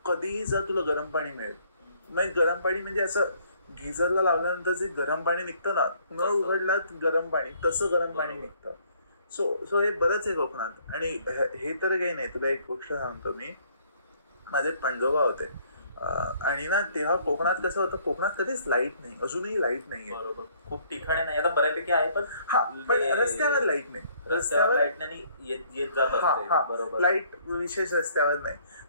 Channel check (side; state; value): both; inverted; correlation -0.62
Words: कधीही जा तुला गरम पाणी मिळेल. मग गरम पाणी म्हणजे असं गिझरला लावल्यानंतर जे गरम पाणी निघतं ना, नळ उघडला गरम पाणी, तसं गरम पाणी निघतं. सो हे बरंच आहे कोकणात. आणि हे तर काही नाही, तुला एक गोष्ट सांगतो मी. माझे पणजोबा होते आणि ना तेव्हा कोकणात कसं होतं, कोकणात कधीच लाईट नाही, अजूनही लाईट नाहीये. बरोबर, खूप ठिकाणी नाही, आता बऱ्यापैकी आहे, पण रस्त्यावर लाईट नाही, रस्त्यावर लाईट नाही येत जात. बरोबर, लाईट विशेष रस्त्यावर नाही.